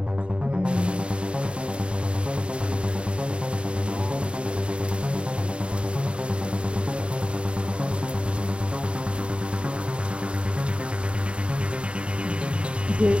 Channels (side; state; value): left; late; 0.056 ms